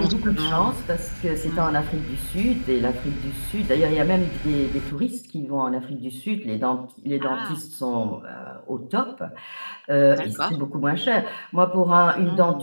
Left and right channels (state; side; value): inverted; both; correlation -1.00